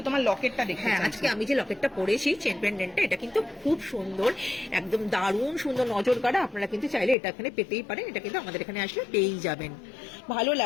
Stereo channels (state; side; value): drops out; right; at 7.2 s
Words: তোমার লকেটটা দেখে। হ্যাঁ, আজকে আমি যে লকেটটা পরেছি চেন পেন্ডেন্টটা, এটা কিন্তু খুব সুন্দর, একদম দারুণ সুন্দর, নজর কাড়া। আপনারা কিন্তু চাইলে এটা এখানে পেতেই পারেন, এটা কিন্তু আমাদের এখানে আসলে পেয়েই যাবেন, ভালো